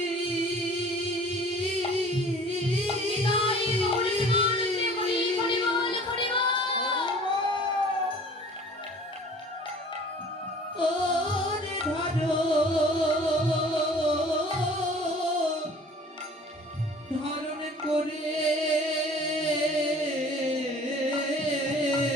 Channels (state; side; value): normal; both; correlation 0.48